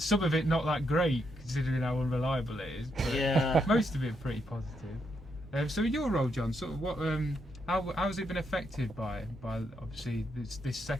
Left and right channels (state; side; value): normal; both; correlation 0.79